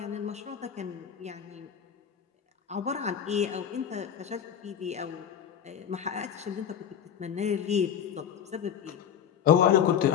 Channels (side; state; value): right; quieter; 8.7 dB